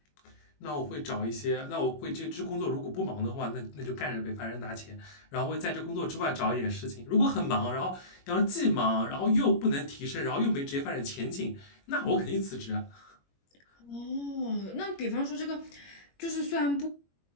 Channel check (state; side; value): late; right; 21 ms